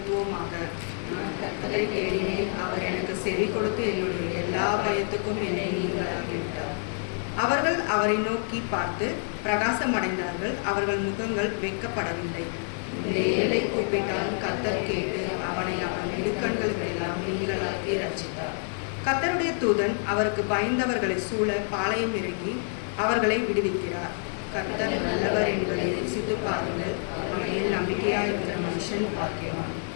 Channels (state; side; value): silent; right; 60 dB below the other